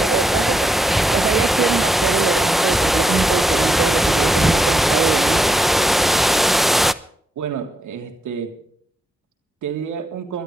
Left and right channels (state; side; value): normal; both; correlation 0.81